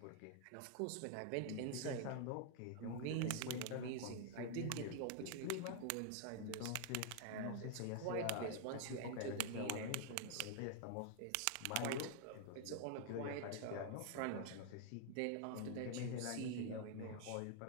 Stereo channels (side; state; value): both; different; correlation 0.00